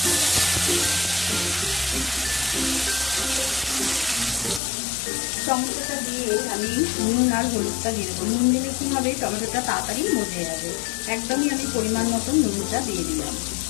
টমেটোটা দিয়ে আমি নুন আর হলুদটা দিয়ে দেবো। নুন দিলে কি হবে, টমেটোটা তাড়াতাড়ি মজে যাবে। একদমই আমি পরিমাণ মতন নুনটা দিয়ে দিলাম।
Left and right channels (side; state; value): right; drops out; at 4.6 s